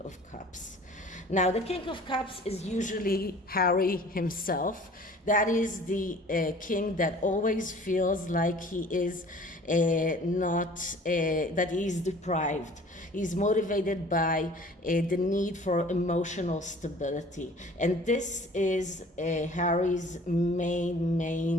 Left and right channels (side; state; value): both; normal; correlation 0.49